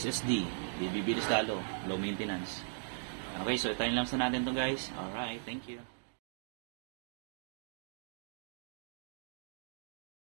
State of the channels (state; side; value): silent; left; digital silence